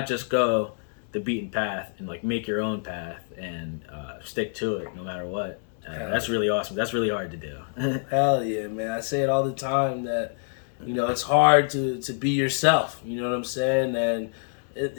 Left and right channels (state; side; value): silent; right; digital silence